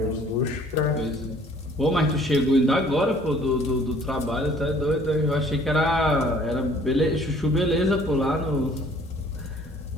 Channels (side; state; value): both; normal; correlation 0.55